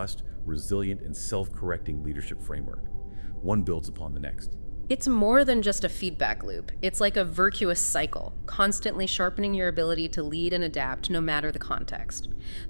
resilient, and self-correcting leadership framework. One builds upon the next. It's more than just a feedback loop. It's like a virtuous cycle, constantly sharpening your ability to lead and adapt no matter the context.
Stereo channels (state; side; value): inverted; both; correlation -1.00